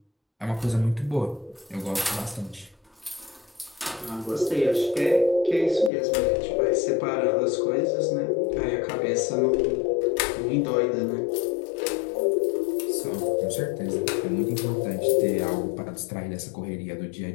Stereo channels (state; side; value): drops out; right; at 5.9 s